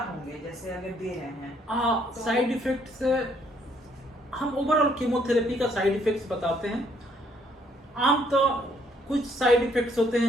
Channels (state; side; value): normal; both; correlation 0.68